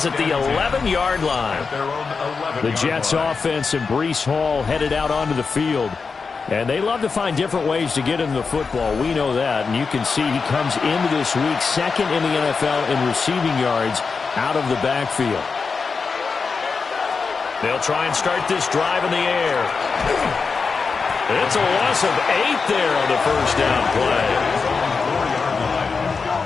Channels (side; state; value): right; quieter; 4.9 dB